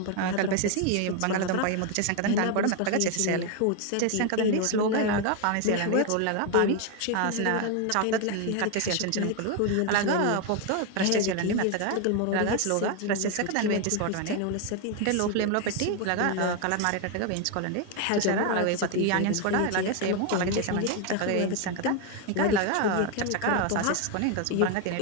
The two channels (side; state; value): both; different; correlation 0.01